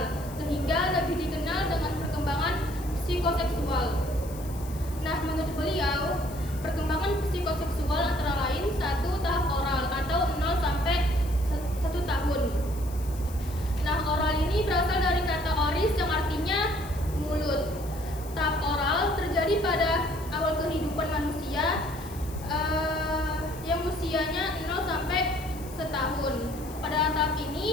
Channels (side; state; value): left; noise; hiss, 18 dB below the sound